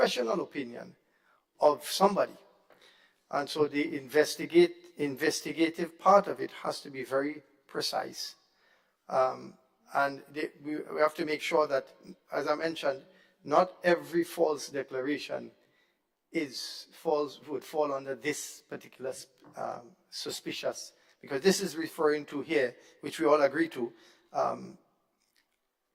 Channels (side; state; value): both; identical; correlation 1.00